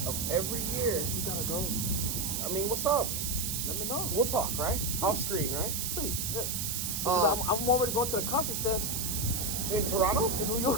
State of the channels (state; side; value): noise; right; hiss, 1 dB below the sound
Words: of every year. We gotta go. I mean, what's up? Let me know. We'll talk, right? Off screen, right? Please, yeah. Because I'm already going to the coffee fest. In Toronto? In New